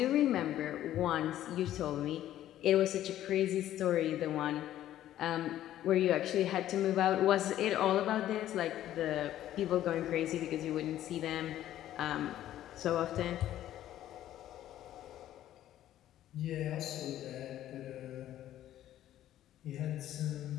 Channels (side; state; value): right; quieter; 12.6 dB